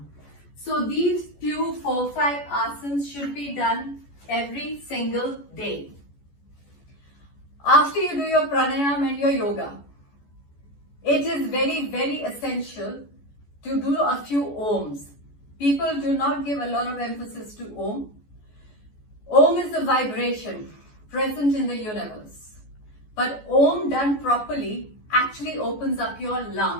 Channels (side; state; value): right; late; 14 ms